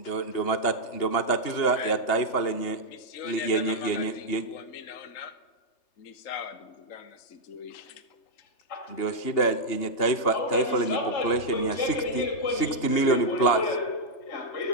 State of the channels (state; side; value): late; right; 3.3 ms